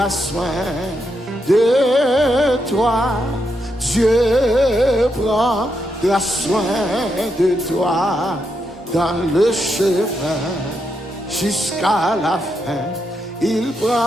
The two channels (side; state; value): both; normal; correlation 0.82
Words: soin de toi. Dieu prendra soin de toi dans le chemin jusqu'à la fin. Il